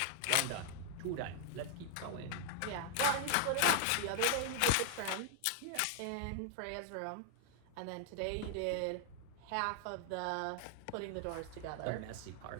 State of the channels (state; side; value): different; both; correlation 0.00